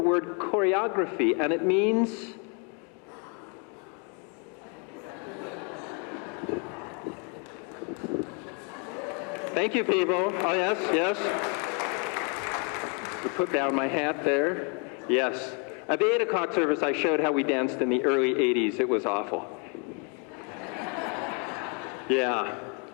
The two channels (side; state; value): right; quieter; 37.1 dB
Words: choreography, and it means thank you, people. Oh, yes, yes. To put down my hat there. Yes. At the 8 o'clock service, I showed how we danced in the early 80s. It was awful. Yeah.